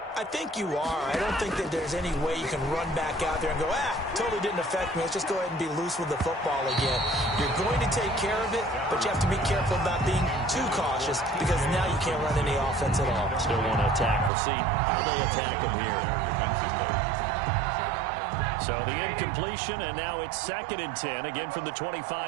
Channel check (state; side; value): drops out; left; at 14.3 s